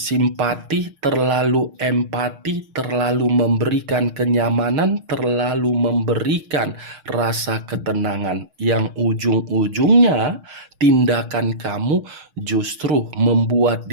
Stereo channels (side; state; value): left; late; 6.5 ms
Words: terlalu empati, terlalu memberikan kenyamanan, terlalu memberikan rasa ketenangan, yang ujung-ujungnya tindakan kamu justru membuat